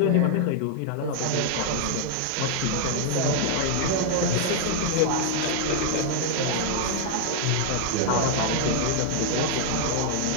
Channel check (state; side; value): different; both; correlation 0.00